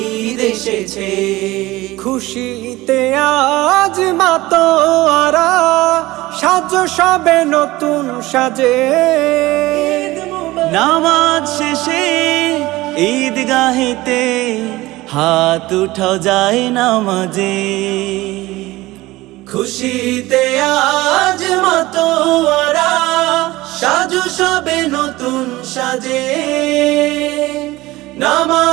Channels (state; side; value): quieter; left; 18.9 dB